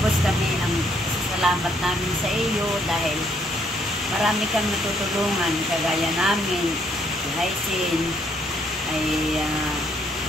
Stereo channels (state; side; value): normal; both; correlation 0.70